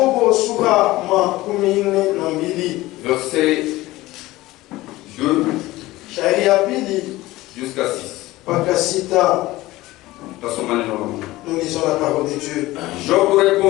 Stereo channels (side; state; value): right; quieter; 18.1 dB